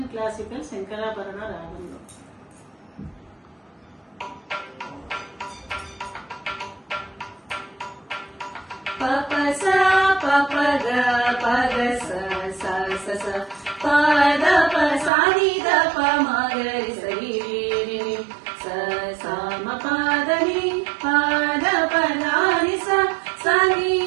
ಕ್ಲಾಸಿಕಲ್ ಶಂಕರಾಭರಣ ರಾಗಂలో ಪಪ ಸ ಪಪ ಗ ಪಗ ಸ ಸ ಸ ಸ ಪದ ಪ ಸಾ ನಿ ದ ಪ ಮ ಗ ರಿ ಸ ರಿ ರಿ ಸ ಸ ಮ ಪದ ನಿ ಪದ ಪ ನ ರಿ ಸ ಸ ನಿ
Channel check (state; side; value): drops out; left; at 15.1 s